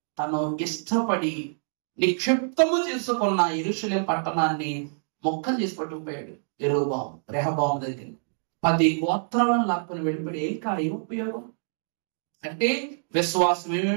తను ఇష్టపడి నిక్షిప్తము చేసుకున్న యెరూషలేము పట్టణాన్ని మొక్కలు చేసి పట్టుకుపోయాడు రెహబాము దగ్గర. 10 గోత్రాలను లాక్కుని వెళ్ళిపోయి ఏం ఉపయోగం అంటే విశ్వాసం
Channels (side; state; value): left; silent; digital silence